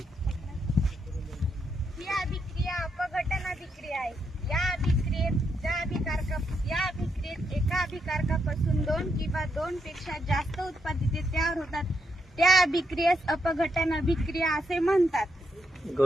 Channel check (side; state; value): both; normal; correlation 0.79